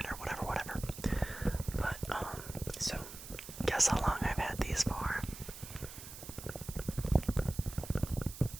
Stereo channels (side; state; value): right; noise; hiss, 13 dB below the sound